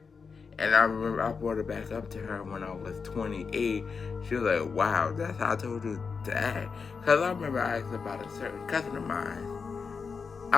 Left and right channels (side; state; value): right; quieter; 5.3 dB